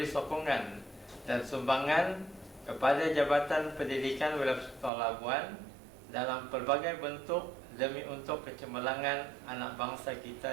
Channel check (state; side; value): drops out; left; at 4.9 s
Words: sokongan dan sumbangan kepada Jabatan Pendidikan Wilayah Persekutuan Labuan dalam pelbagai bentuk demi untuk kecemerlangan anak bangsa